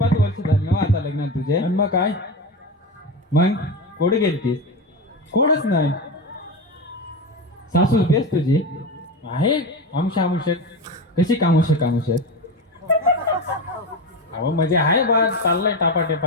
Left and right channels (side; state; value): both; normal; correlation 0.20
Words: वर्ष झाली ना आता लग्नात तुझे. आणि मग काय मग कोठे गेलतीस. कोणच नाही. सासू बेस तुझी आहे आमुषक कशी कामुषक अहो म्हणजे आहे बा चाललाय